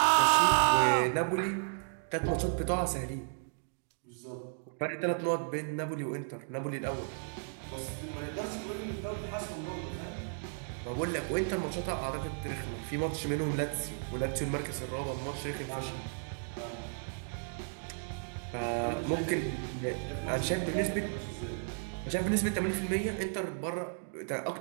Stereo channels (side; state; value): left; silent; digital silence